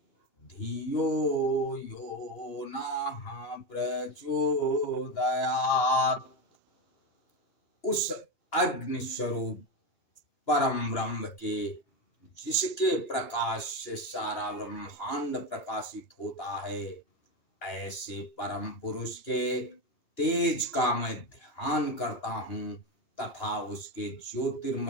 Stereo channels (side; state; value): right; late; 2.9 ms